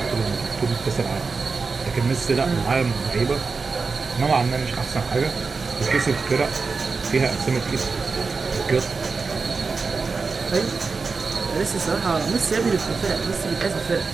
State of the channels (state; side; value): quieter; left; 4.6 dB